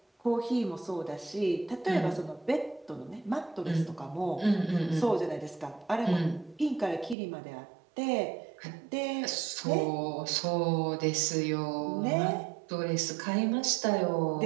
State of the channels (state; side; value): drops out; left; at 7.2 s